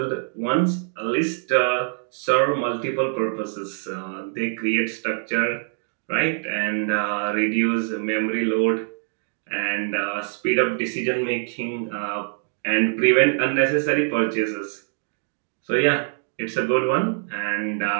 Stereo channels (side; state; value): left; silent; digital silence